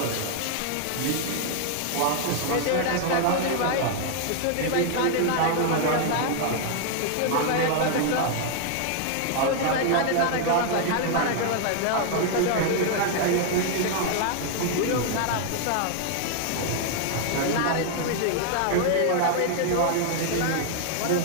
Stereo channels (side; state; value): both; different; correlation 0.00